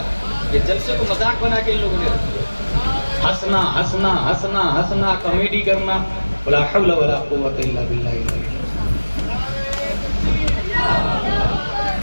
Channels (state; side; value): inverted; both; correlation -1.00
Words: یہ جلسے کو مذاق بنا کے ان لوگوں نے ہنسنا ہنسنا ہنسنا ہنسنا کامیڈی کرنا. ولا حول ولا قوت الا باللہ.